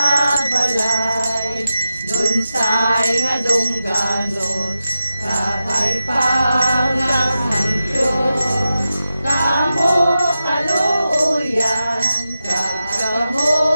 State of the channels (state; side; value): inverted; both; correlation -0.91